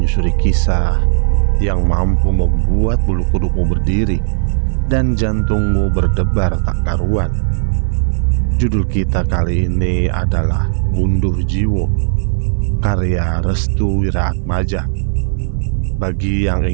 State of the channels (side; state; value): left; silent; digital silence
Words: kisah yang mampu membuat bulu kudukmu berdiri dan jantungmu berdebar tak karuan. Judul kita kali ini adalah Gunduh Jiwo, karya Restu Wiraatmaja. Bagi yang